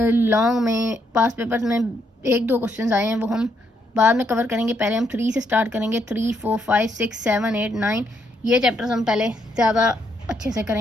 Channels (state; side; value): normal; both; correlation 0.75